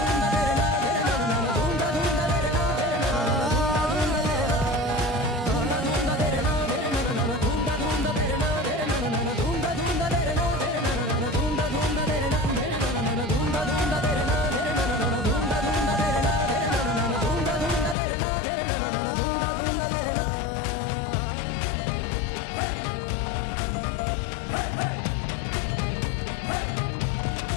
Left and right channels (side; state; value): right; drops out; at 17.9 s